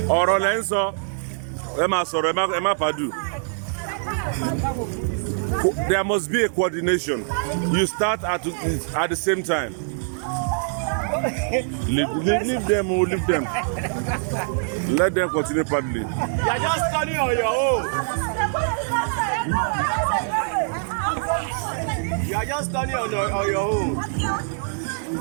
Ọ̀rọ̀ lẹ́ ń sọ. Ẹ máa sọ̀rọ̀, ẹ má pàdù. There must be a coordination. You start at the same time. Leave them. Let them continue paddling. You are just turning on your own. You are just turning on your own.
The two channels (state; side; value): silent; left; 63 dB below the other